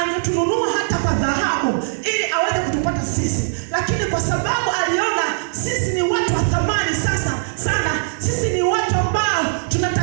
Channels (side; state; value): left; silent; digital silence